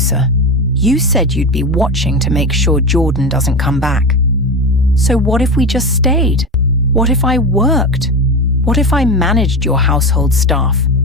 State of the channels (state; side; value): normal; both; correlation 0.22